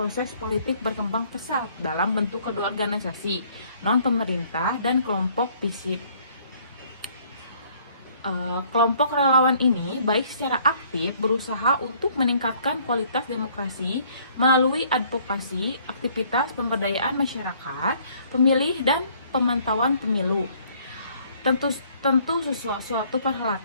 politik berkembang pesat dalam bentuk kedua organisasi, non-pemerintah, dan kelompok visip. Kelompok relawan ini baik secara aktif berusaha untuk meningkatkan kualitas demokrasi melalui advokasi, aktivitas pemberdayaan masyarakat, pemilih, dan pemantauan pemilu. Tentu suatu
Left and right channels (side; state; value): both; inverted; correlation -0.61